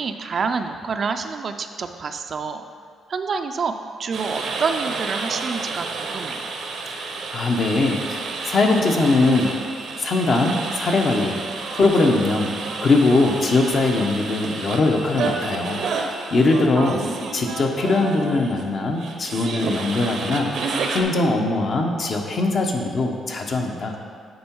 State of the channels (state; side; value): normal; both; correlation 0.78